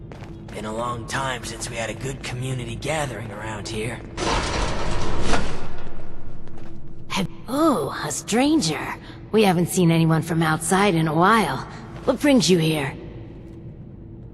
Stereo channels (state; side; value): identical; both; correlation 1.00